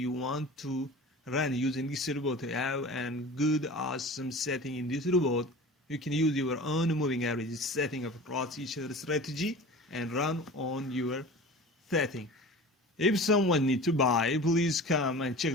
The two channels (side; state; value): both; normal; correlation 0.37